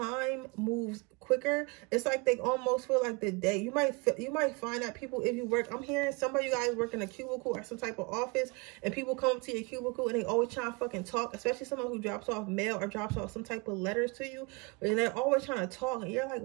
moves quicker. It's like they almost feel like the day. You might find that people, if you work, I'm hearing some of you guys work in a cubicle or some type of office, and people come to your cubicle and they always trying to fucking talk, especially someone who drops off mail or drops off some type of letters to you, and they're always trying to talk, and you're like,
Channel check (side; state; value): left; quieter; 28.6 dB